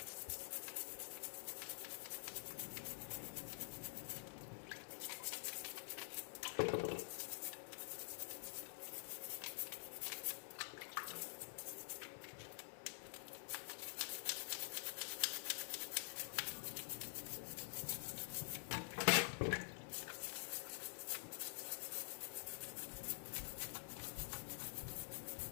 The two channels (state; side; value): silent; right; digital silence